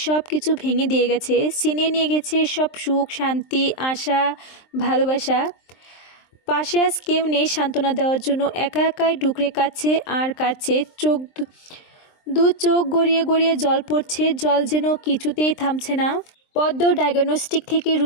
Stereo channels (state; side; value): late; right; 23 ms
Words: সব কিছু ভেঙে দিয়ে গেছে, ছিনিয়ে নিয়ে গেছে সব সুখ, শান্তি, আশা, ভালোবাসা। পাশে আজ কেউ নেই সান্ত্বনা দেওয়ার জন্য। একা একাই ডুকরে কাচ্ছে আর কাচ্ছে। দু চোখ গড়িয়ে গড়িয়ে জল পড়ছে, জল যেন কিছুতেই থামছে না। পদ্ম ডায়াগনস্টিক থেকে